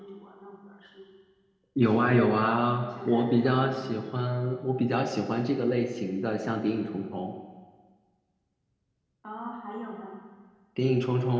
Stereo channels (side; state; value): both; identical; correlation 1.00